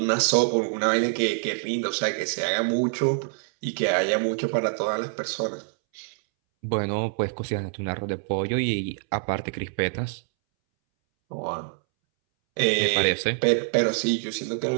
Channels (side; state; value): left; silent; 61 dB below the other